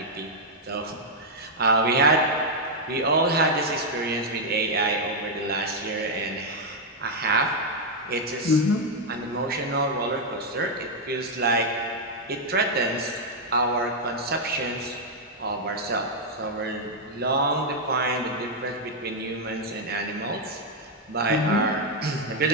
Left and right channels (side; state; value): both; normal; correlation -0.02